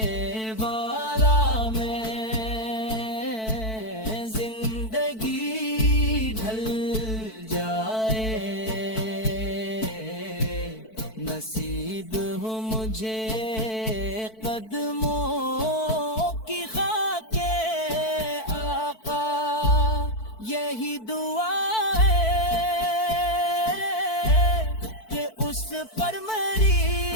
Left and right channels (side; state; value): right; late; 4.5 ms